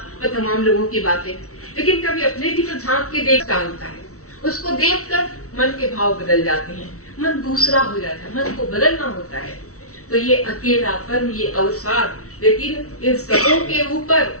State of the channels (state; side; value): late; right; 0.64 ms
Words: तमाम लोगों की बातें, लेकिन कभी अपने भी तो झांक के देख डालता है। उसको देखकर मन के भाव बदल जाते हैं, मन दूसरा हो जाता है, मन को बदलना होता है। तो ये अकेलापन, ये अवसाद, लेकिन इन सबों के ऊपर